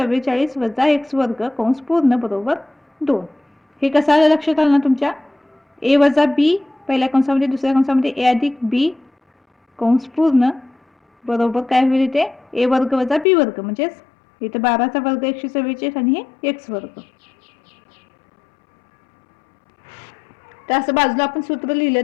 वजा x वर्ग कंस पूर्ण बरोबर 2. हे कसं आलं लक्षात आलं ना तुमच्या a वजा b पहिल्या कंसामध्ये दुसऱ्या कंसामध्ये a अधिक b कंस पूर्ण बरोबर काय होईल इथे a वर्ग वजा b वर्ग म्हणजेच इथे 12चा वर्ग 144 आणि हे x वर्ग. तर असं बाजूला आपण सूत्र लिहिलं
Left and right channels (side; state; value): right; drops out; at 13.2 s